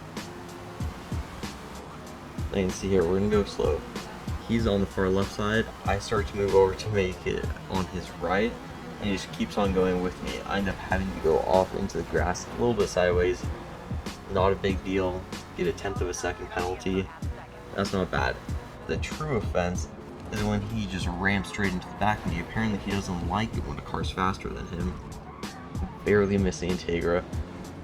You can see here, we're going to go slow. He's on the far left side. I start to move over to make it on his right, and he just keeps on going with me. I end up having to go off into the grass a little bit sideways. Not a big deal. Get a 1/10 of a second penalty. That's not bad. The true offense is when he just rams straight into the back of me. Apparently he doesn't like it when a car's faster than him. Barely missing Integra.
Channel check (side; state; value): both; identical; correlation 1.00